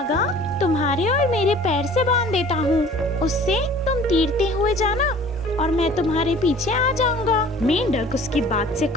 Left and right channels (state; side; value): normal; both; correlation 0.49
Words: तुम्हारे और मेरे पैर से बांध देता हूँ। उससे तुम तैरते हुए जाना और मैं तुम्हारे पीछे आ जाऊंगा। मेंढक उसकी बात से